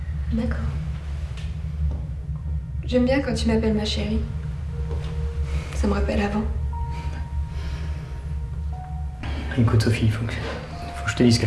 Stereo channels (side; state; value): both; identical; correlation 1.00